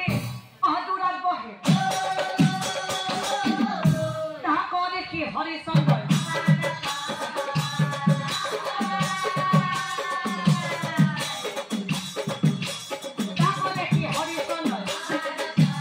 দূৰত বহে তাক দেখি হৰিচন্দ্ৰই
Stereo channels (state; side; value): identical; both; correlation 1.00